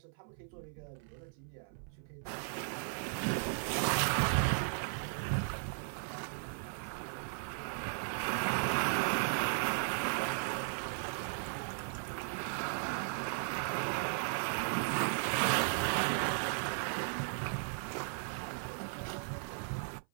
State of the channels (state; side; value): silent; left; 53 dB below the other